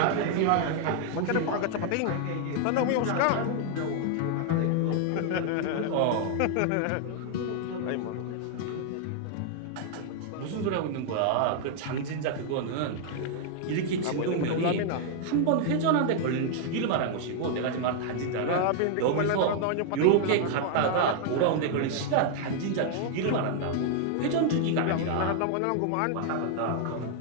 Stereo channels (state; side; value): different; both; correlation 0.00